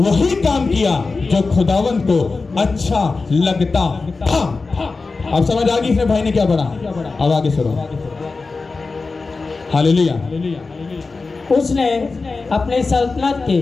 काम किया जो खुदावंत को अच्छा लगता था। अब समझ आ गई इसने भाई ने क्या पढ़ा? अब आगे सुनो। हालेलुया। उसने अपनी सल्तनत के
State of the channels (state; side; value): quieter; right; 4.0 dB